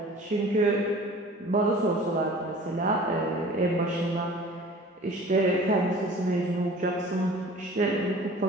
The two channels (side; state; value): both; normal; correlation 0.45